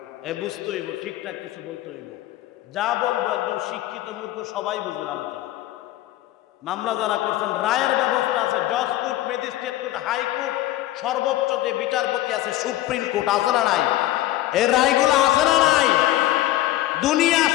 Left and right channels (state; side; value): quieter; right; 15.2 dB